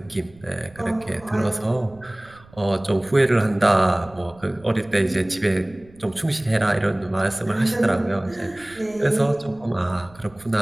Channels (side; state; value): right; noise; rumble, 25 dB below the sound